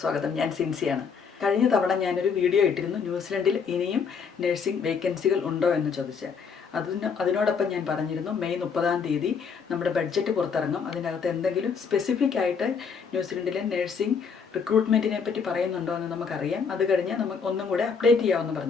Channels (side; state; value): right; quieter; 6.0 dB